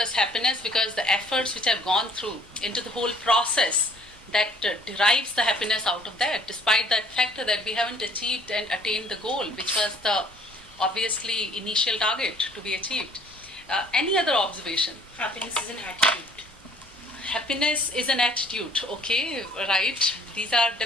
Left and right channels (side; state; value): both; normal; correlation 0.58